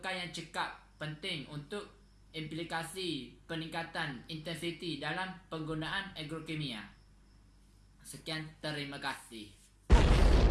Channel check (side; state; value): both; identical; correlation 1.00